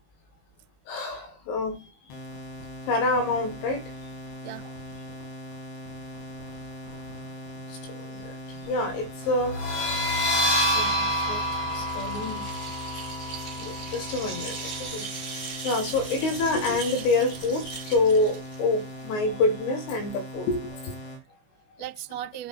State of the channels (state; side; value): late; right; 19 ms